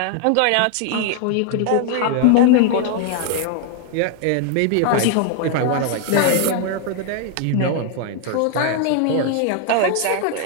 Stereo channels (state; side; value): different; both; correlation 0.00